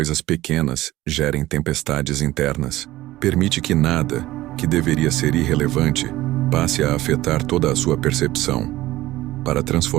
pequenas gerem tempestades internas. Permite que nada, que deveria ser irrelevante, passe a afetar toda a sua percepção. Para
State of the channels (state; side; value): quieter; left; 16.8 dB